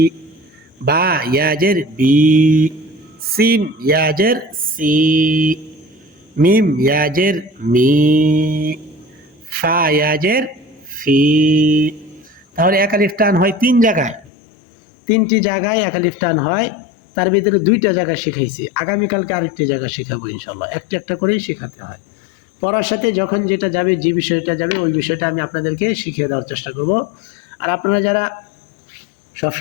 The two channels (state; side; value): drops out; right; at 14.3 s